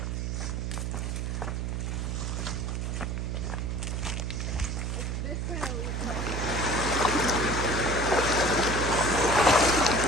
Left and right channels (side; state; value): right; noise; hum, 2 dB below the sound